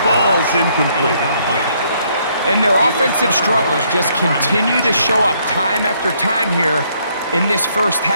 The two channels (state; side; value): inverted; both; correlation -0.69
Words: falls incomplete. And their offensive struggles just continue to show up time after time here in this first